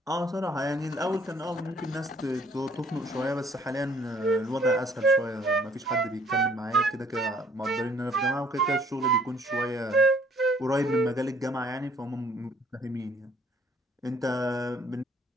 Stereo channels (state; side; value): normal; both; correlation 0.60